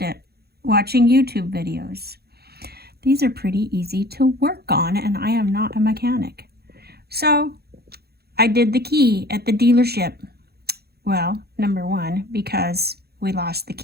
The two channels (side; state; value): left; late; 0.46 ms